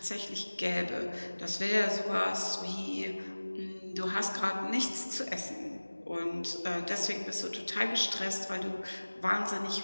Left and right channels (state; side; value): inverted; both; correlation -1.00